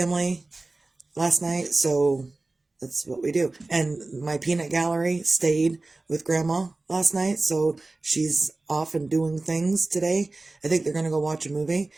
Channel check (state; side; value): quieter; left; 3.2 dB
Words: last night, so that's what we do. And my peanut gallery stayed with grandma last night, so she's off and doing things today. I think they're gonna go watch a movie,